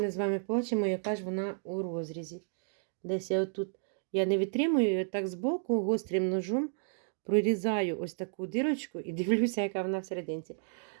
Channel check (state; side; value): silent; left; digital silence